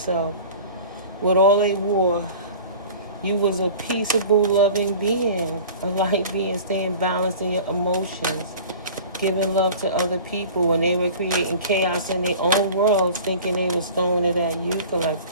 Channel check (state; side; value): inverted; both; correlation -0.41